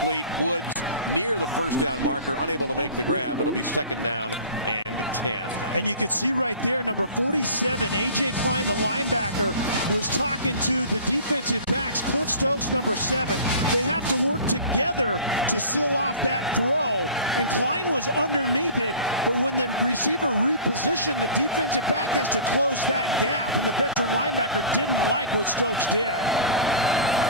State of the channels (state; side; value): inverted; both; correlation -0.40